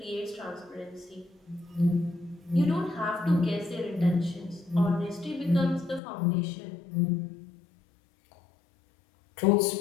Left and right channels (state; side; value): drops out; right; at 6.0 s